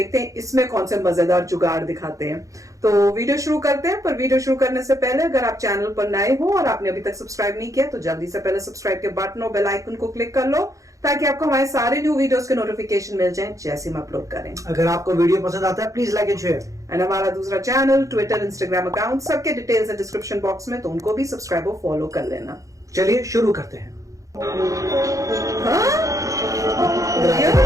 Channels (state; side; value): late; left; 0.16 ms